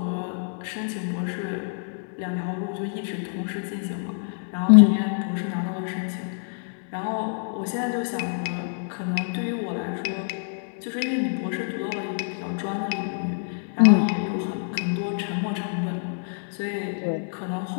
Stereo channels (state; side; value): silent; right; digital silence